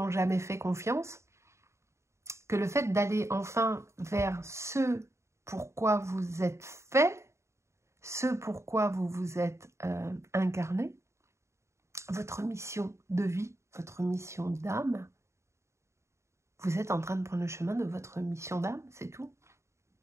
jamais fait confiance, que le fait d'aller enfin vers ce pourquoi vous êtes fait, ce pourquoi vous vous êtes incarné, votre mission de vie, votre mission d'âme, vous êtes en train de prendre le chemin de votre mission d'âme, c'est tout.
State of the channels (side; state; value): left; late; 0.14 ms